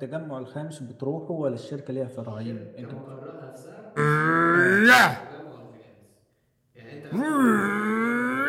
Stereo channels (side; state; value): both; identical; correlation 1.00